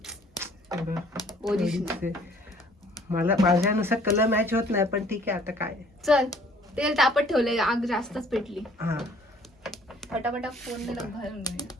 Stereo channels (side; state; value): both; normal; correlation 0.57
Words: मला माझ्यानुसार कलर मॅच होत नाही, पण ठीक आहे आता काय. चल तेल तापत ठेवलंय, आग जास्तच पेटली. हा फटाफटा फोन भरून घेऊया.